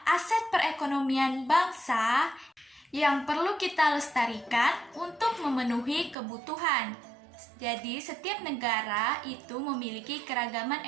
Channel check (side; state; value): left; drops out; at 6.2 s